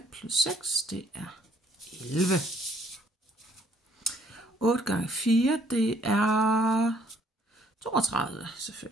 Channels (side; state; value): both; normal; correlation 0.64